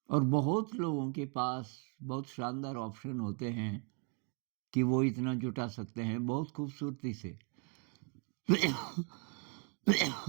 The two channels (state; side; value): quieter; left; 36.0 dB